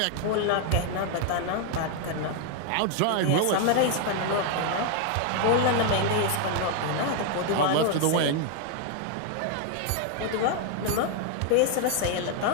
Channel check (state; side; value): different; both; correlation 0.00